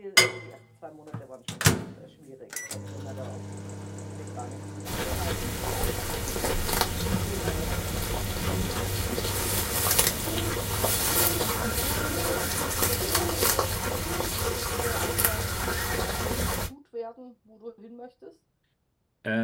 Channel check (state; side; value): identical; both; correlation 1.00